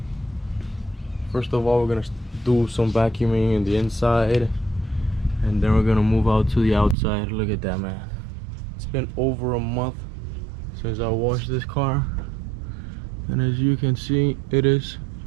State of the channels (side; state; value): left; drops out; at 7.0 s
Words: First of all, we're gonna do some vacuuming in the inside, and then we're gonna move out to the outside. Look at that, man. It's been over a month since I washed this car, and as you can see, it is